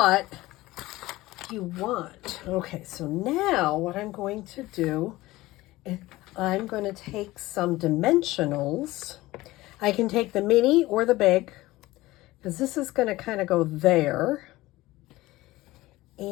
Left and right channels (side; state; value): right; quieter; 18.4 dB